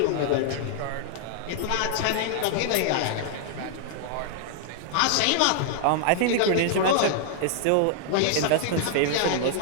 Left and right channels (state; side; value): different; both; correlation -0.01